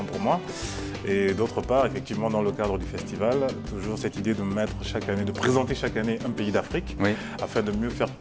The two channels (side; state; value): both; identical; correlation 1.00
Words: pour moi. Et d'autre part, effectivement, dans le cadre du festival, toujours cette idée de mettre chaque année, de présenter chaque année un pays d'Afrique, oui, afin de mieux faire